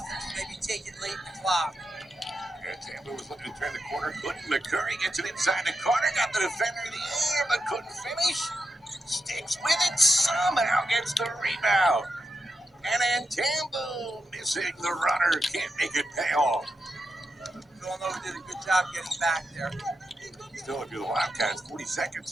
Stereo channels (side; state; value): both; normal; correlation 0.87